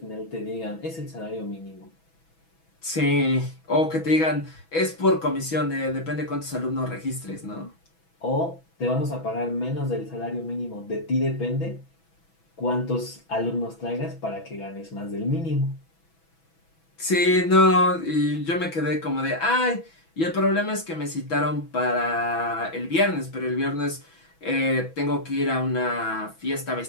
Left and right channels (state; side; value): late; right; 6.1 ms